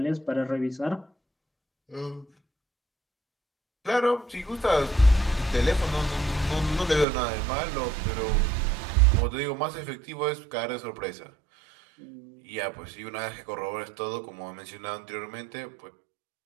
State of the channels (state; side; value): drops out; left; at 7.1 s